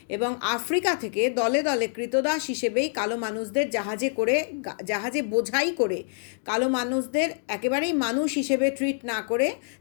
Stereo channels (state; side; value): silent; right; digital silence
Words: এবং আফ্রিকা থেকে দলে দলে কৃতদাস হিসেবেই কালো মানুষদের জাহাজে বোঝাই করে কালো মানুষদের একেবারেই মানুষ হিসেবে ট্রিট না করে